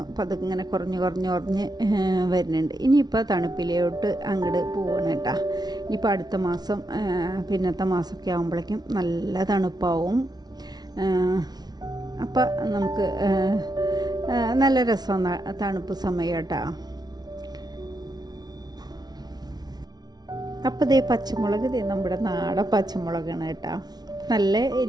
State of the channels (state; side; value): late; left; 0.19 ms